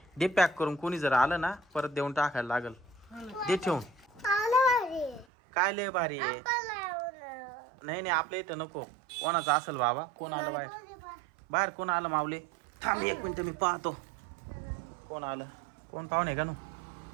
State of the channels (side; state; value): left; drops out; at 5.2 s